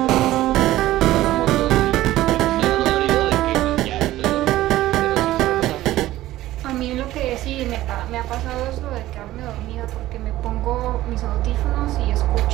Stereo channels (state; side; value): quieter; left; 15.4 dB